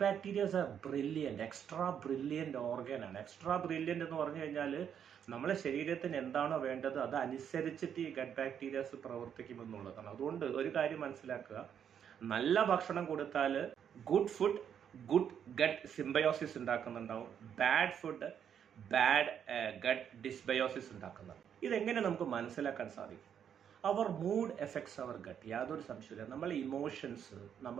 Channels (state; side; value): quieter; left; 8.5 dB